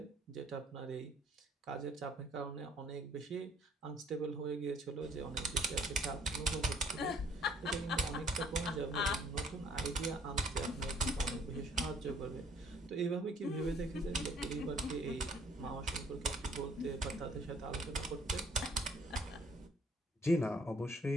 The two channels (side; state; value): both; normal; correlation 0.60